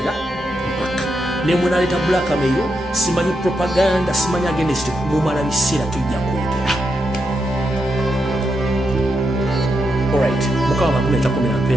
mpaka ne munaleeta blackmail simanyi propaganda simanyi against mumala biseera tujja kwogera alright mukama bakuleeta komera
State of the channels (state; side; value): normal; both; correlation 0.84